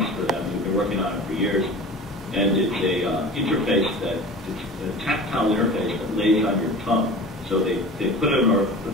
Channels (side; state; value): both; normal; correlation 0.37